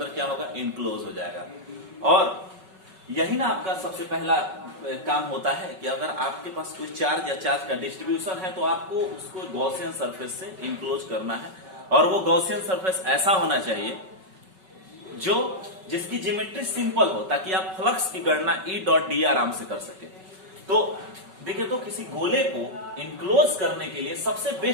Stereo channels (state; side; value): late; left; 5.3 ms